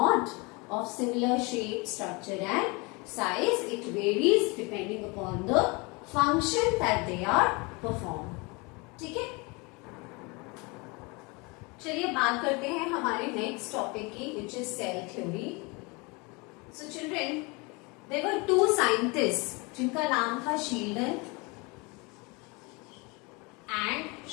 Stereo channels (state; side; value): quieter; right; 27.8 dB